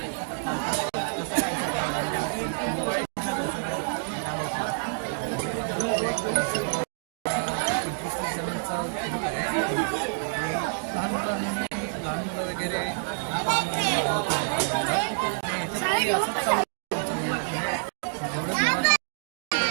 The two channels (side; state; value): left; silent; digital silence